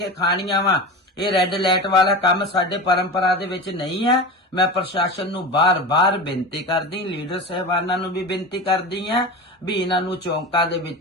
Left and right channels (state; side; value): normal; both; correlation 0.28